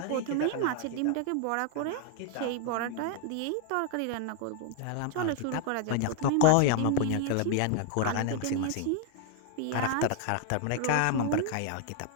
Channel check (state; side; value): different; both; correlation 0.00